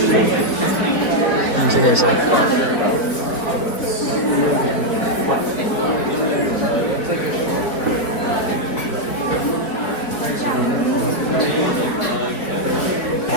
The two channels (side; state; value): right; late; 4.8 ms